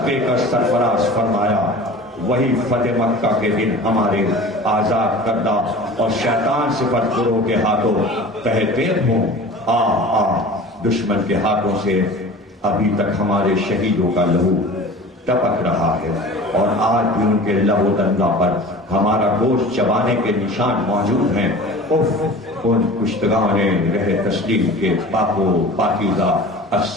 دے کر سرفراز فرمایا، وہی فتح مکہ کے دن ہمارے آزاد کردہ اور شیطان صفت گروہ کے ہاتھوں تہتے ہوں. دشمن کے ہاتھوں سے ابھی تک ہمارے شہیدوں کا لہو ٹپک رہا ہے اور آج بھی ان کے لہو دندہ پر ہمارا گوشت چبانے کے نشان موجود ہیں. ان کشتگان رہ تسلیم کے پاک و پاکیزہ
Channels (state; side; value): normal; both; correlation 0.39